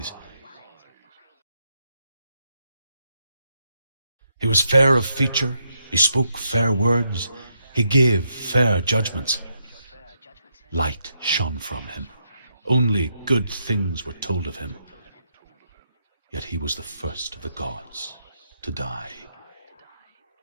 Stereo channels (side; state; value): both; inverted; correlation -0.79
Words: He was fair of feature, he spoke fair words, he gave fair judgments. Light shone from him. Only good things were told of him. Yet he was the first of the gods to die.